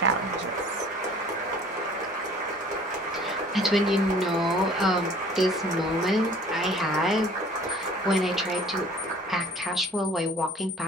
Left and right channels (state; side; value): normal; both; correlation 0.51